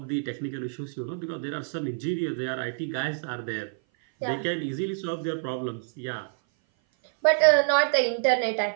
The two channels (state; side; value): silent; left; 56 dB below the other